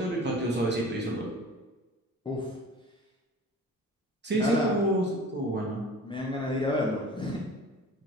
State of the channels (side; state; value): both; normal; correlation 0.42